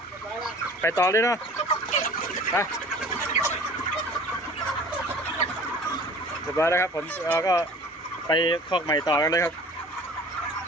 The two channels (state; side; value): normal; both; correlation 0.45